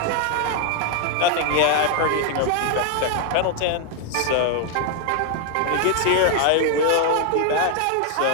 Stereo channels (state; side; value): different; both; correlation 0.00